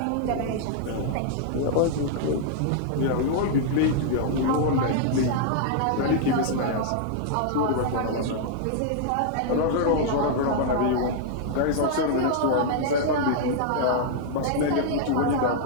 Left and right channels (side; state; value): both; different; correlation -0.01